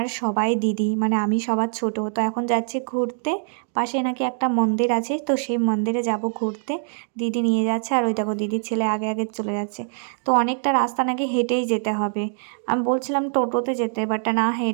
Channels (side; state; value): left; silent; digital silence